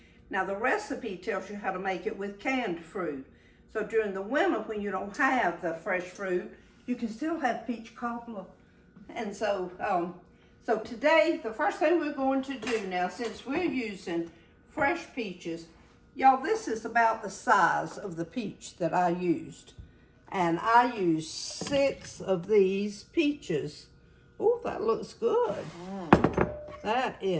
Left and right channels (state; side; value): identical; both; correlation 1.00